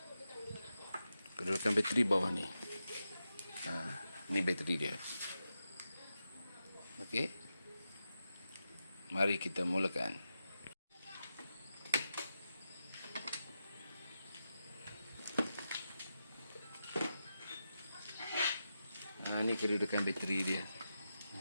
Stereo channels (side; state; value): both; inverted; correlation -0.89